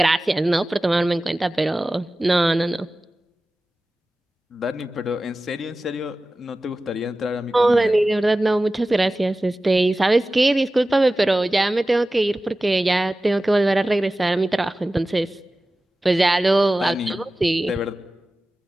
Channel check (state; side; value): normal; both; correlation 0.96